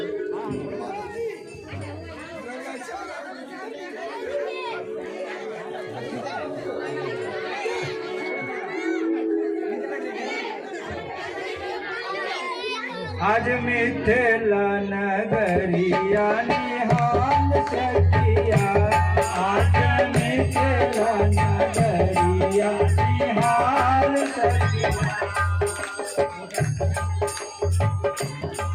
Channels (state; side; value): identical; both; correlation 1.00